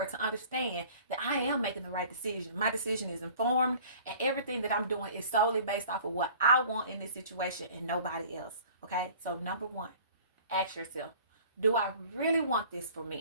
to understand that I am making the right decision. My decision is informed, and everything that I'm doing is solely based off of what I want in this situation and nobody else. Okay? So number one, ask yourself, do I really want this for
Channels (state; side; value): inverted; both; correlation -0.48